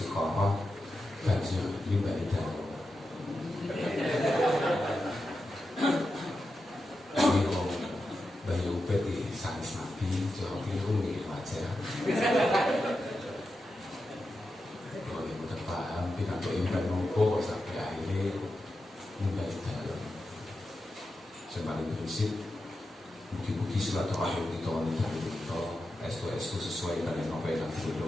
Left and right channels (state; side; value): normal; both; correlation 0.89